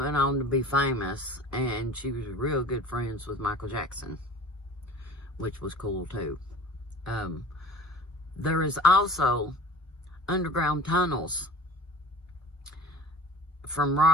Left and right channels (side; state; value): both; normal; correlation 0.43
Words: on to be famous, and she was real good friends with Michael Jackson, which was cool too. There is also underground tunnels from